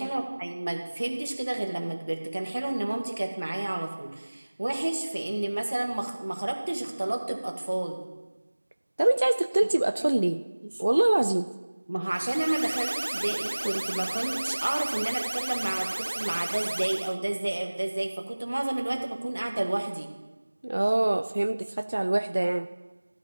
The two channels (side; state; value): both; inverted; correlation -1.00